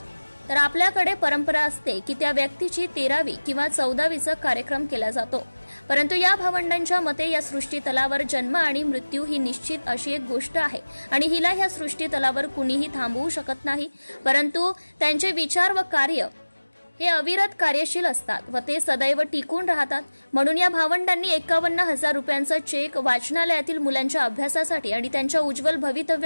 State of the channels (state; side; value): inverted; both; correlation -1.00